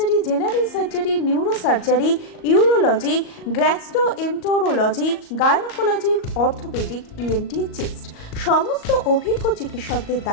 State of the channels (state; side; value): late; right; 38 ms